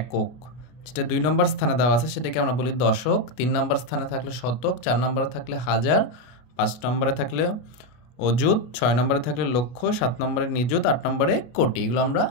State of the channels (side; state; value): right; late; 33 ms